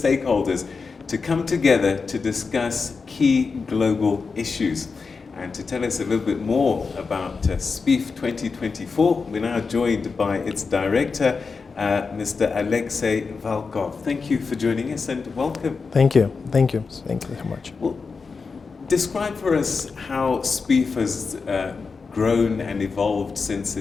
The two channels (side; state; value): right; quieter; 4.8 dB